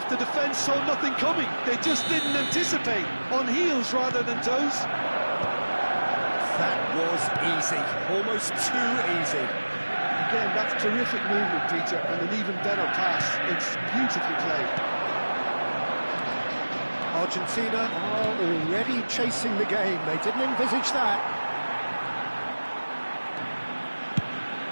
the defence saw nothing coming. They just didn't anticipate. On heels rather than toes. That was easy, almost too easy. Again, that's terrific movement, Peter, and an even better pass. It's beautifully played. Argentina are already chasing the game. They didn't envisage that.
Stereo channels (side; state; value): both; inverted; correlation -1.00